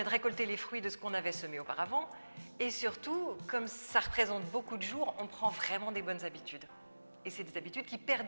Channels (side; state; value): both; inverted; correlation -1.00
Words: de récolter les fruits de ce qu'on avait semé auparavant. Et surtout, comme ça représente beaucoup de jours, on prend vraiment des bonnes habitudes. Et c'est des habitudes qui